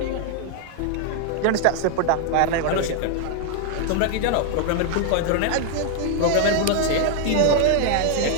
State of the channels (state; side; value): different; both; correlation 0.00